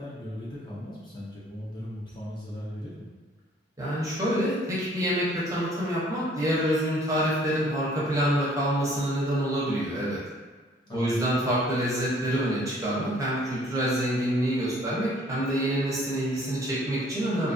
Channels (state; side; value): normal; both; correlation 0.58